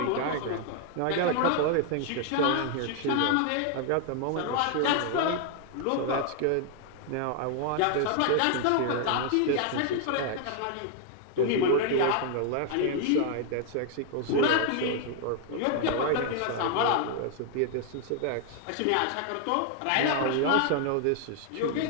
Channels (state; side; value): different; both; correlation 0.00